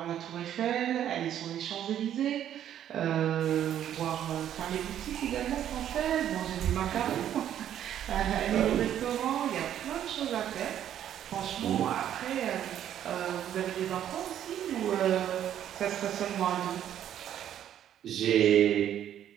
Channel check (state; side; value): quieter; left; 10.6 dB